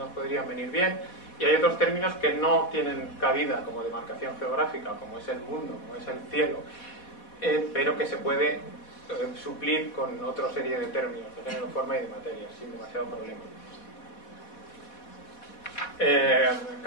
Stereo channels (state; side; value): late; right; 4.1 ms